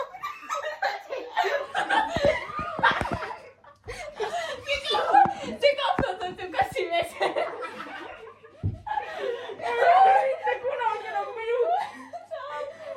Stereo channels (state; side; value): identical; both; correlation 1.00